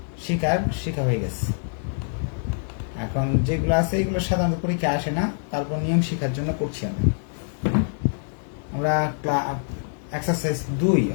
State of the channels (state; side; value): silent; right; 62 dB below the other